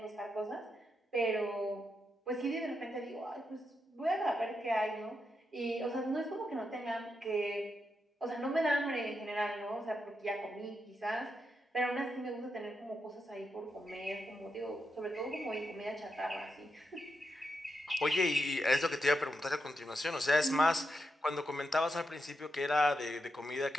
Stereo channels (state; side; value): normal; both; correlation 0.85